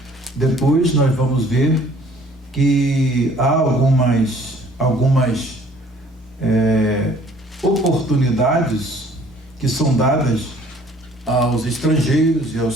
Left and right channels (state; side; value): normal; both; correlation 0.56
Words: nós vamos ver que há algumas oportunidades que são dadas aos estrangeiros e